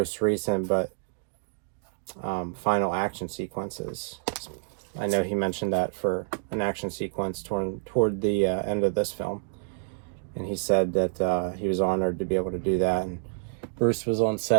recent but final action sequences. I know he mentioned that for an action sequence toward the end of this film, and he said that he was honored to be able to do that. And Bruce was on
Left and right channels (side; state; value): left; silent; 59 dB below the other